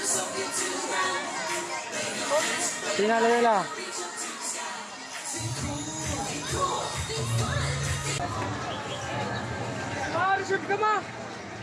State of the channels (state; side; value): identical; both; correlation 1.00